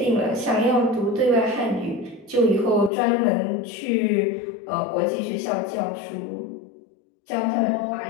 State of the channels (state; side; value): drops out; right; at 2.9 s